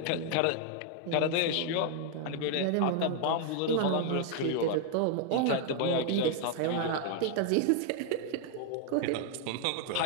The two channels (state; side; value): different; both; correlation 0.00